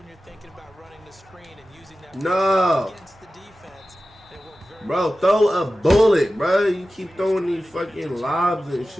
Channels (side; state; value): both; normal; correlation 0.95